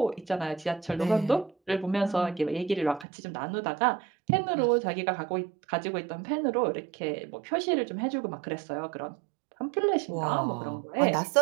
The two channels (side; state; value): left; drops out; at 3.1 s